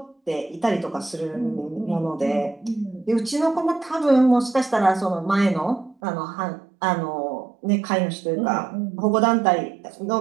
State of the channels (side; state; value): left; drops out; at 6.0 s